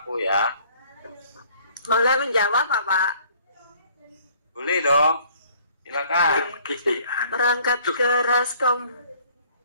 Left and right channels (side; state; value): both; inverted; correlation -0.58